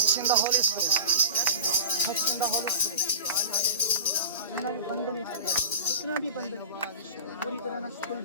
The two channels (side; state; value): both; inverted; correlation -0.36